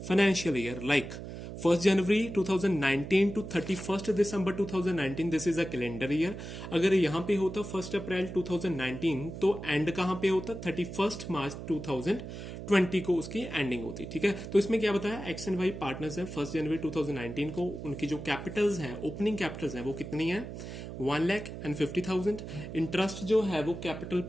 financial year. Like 1 January 2019 to 31st December 2019, this is a calendar year. अगर यहाँ पे होता 1 अप्रैल 2019 तो एंड कहाँ पे होता? 31 मार्च 2020 को उसकी एंडिंग होती। ठीक है, तो इसमें क्या बताया? एक्स एंड वाई पार्टनर्स हैं। 1 जनवरी 2019 को उनकी जो कैपिटल्स हैं, ओपनिंग कैपिटल्स हैं, वो कितनी है? 1,50,000। इंटरेस्ट जो है वो कैपिटल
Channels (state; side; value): noise; right; hum, 9 dB below the sound